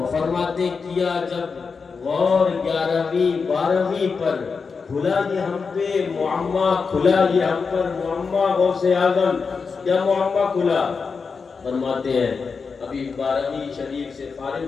فرماتے کیا جب غور 11ویں 12ویں پر کھلا یہ ہم پہ معمہ، کھلا یہ ہم پر معمہ غوث اعظم، کیا معمہ کھلا؟ فرماتے ہیں ابھی 12ویں شریف سے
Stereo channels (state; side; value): quieter; right; 5.1 dB